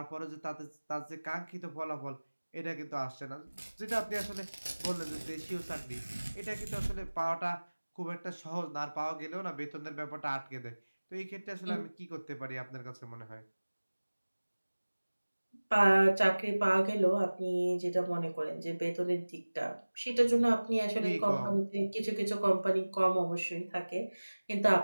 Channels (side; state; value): both; inverted; correlation -1.00